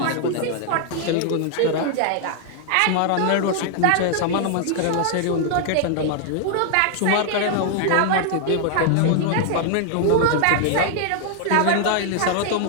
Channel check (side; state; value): both; different; correlation 0.00